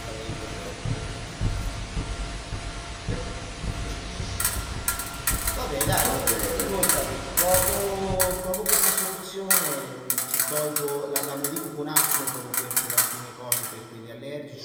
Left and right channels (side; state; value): both; identical; correlation 1.00